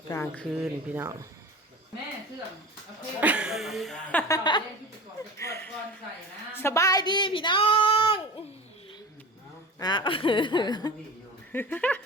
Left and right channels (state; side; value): normal; both; correlation 0.33